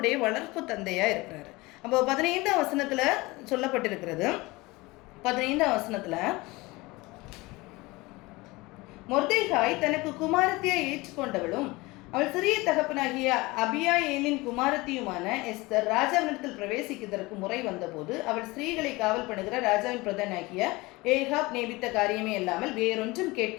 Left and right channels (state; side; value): quieter; right; 22.4 dB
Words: வளர்ப்பு தந்தையாக இருக்கிறாரு. அப்போ 15ஆம் வசனத்தில் சொல்லப்பட்டிருக்கிறது. 15ஆம் வசனத்தில் மொர்தெகாய் தனக்கு குமாரத்தியை ஏற்றுக்கொண்டவளும் அவள் சிறிய தகப்பனாகிய அபியாயேலின் குமாரத்தியுமான எஸ்தர் ராஜாவினிடத்தில் பிரவேசிக்கிறதற்கு முறை வந்தபோது அவள் ஸ்திரீகளை காவல் பண்ணுகிற ராஜாவின் பிரதானாகிய ஏகாப் நேபித்த காரியமே இல்லாமல் வேறொன்றும்